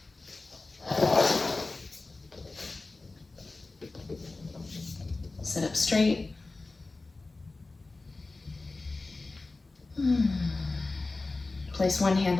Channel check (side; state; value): right; quieter; 3.4 dB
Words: Sit up straight. Place one hand